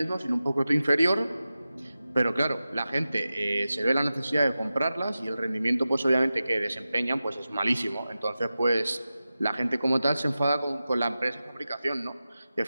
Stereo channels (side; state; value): both; inverted; correlation -0.94